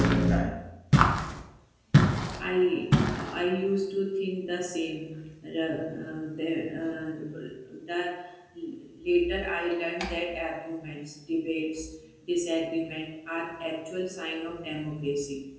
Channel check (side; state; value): both; identical; correlation 1.00